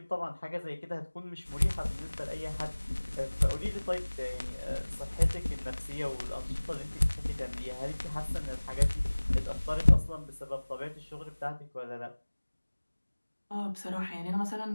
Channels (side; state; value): both; inverted; correlation -1.00